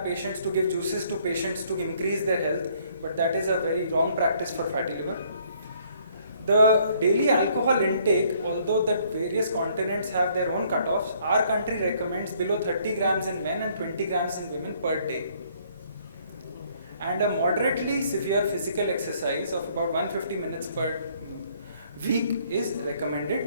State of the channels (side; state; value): both; inverted; correlation -0.64